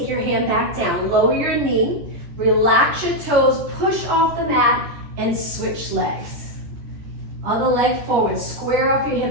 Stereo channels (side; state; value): left; late; 14 ms